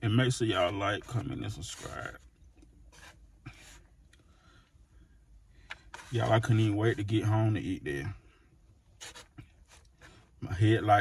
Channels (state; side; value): identical; both; correlation 1.00